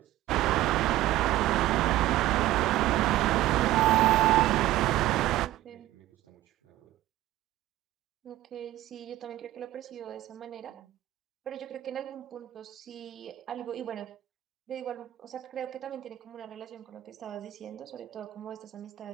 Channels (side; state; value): left; quieter; 15.3 dB